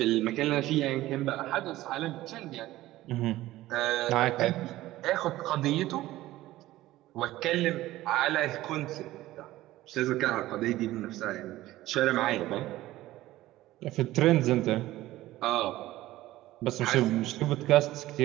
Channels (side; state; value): left; quieter; 16.2 dB